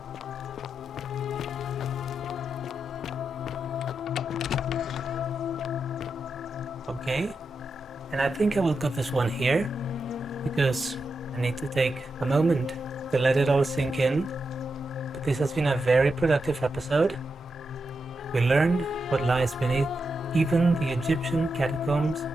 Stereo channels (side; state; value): both; normal; correlation 0.87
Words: Okay. And I think I will cut this one here, because I need to take a moment to let it all sink in. But this has been a very productive episode. We learned what lies beneath even the Egyptian catacombs.